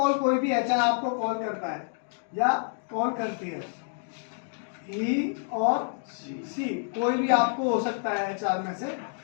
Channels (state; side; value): silent; right; digital silence